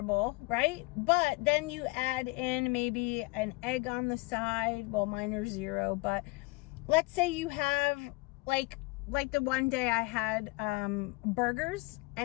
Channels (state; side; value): quieter; right; 25.2 dB